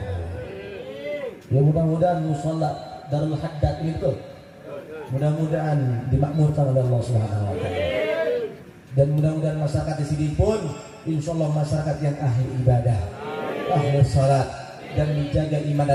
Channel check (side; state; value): both; identical; correlation 1.00